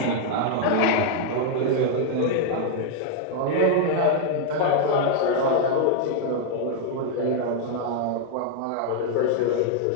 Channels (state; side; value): different; both; correlation -0.01